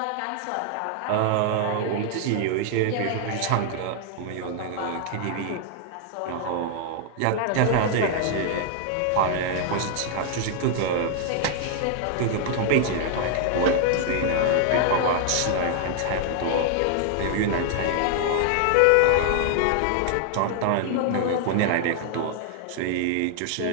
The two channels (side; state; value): both; different; correlation 0.00